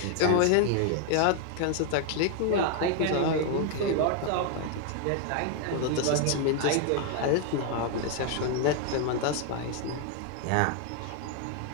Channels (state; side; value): different; both; correlation 0.00